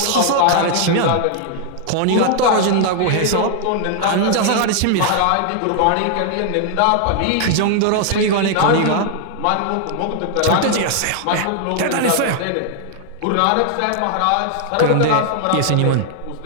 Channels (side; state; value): both; different; correlation 0.00